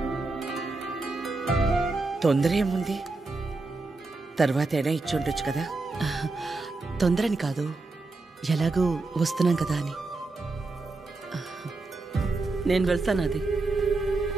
తొందర ఏముంది, తర్వాత అయినా ఇచ్చి ఉండొచ్చు కదా. తొందరని కాదు, ఎలాగూ వస్తున్నాం కదా అని. నేను వెళ్తాను. అది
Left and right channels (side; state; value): left; quieter; 3.4 dB